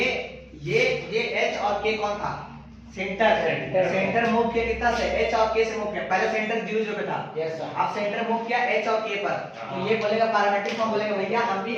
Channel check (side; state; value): both; identical; correlation 1.00